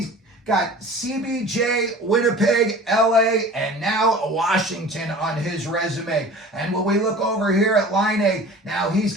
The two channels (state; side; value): normal; both; correlation 0.41